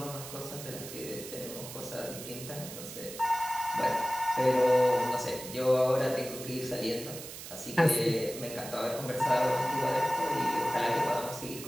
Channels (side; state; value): right; noise; hiss, 11 dB below the sound